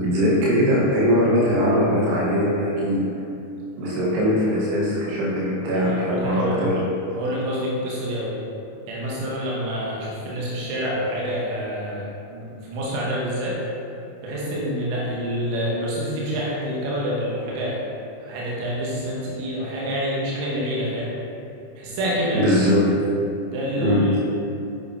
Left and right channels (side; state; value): left; late; 28 ms